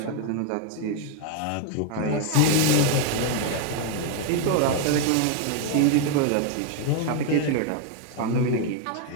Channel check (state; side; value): different; both; correlation 0.01